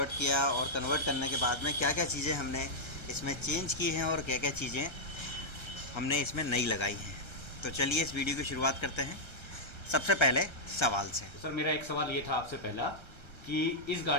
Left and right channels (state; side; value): late; right; 1.3 ms